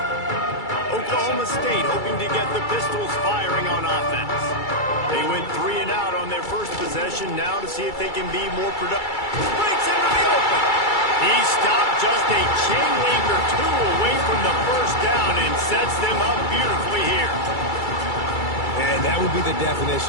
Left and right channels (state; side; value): late; right; 2.3 ms